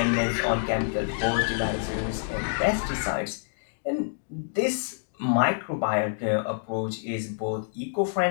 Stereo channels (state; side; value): silent; right; digital silence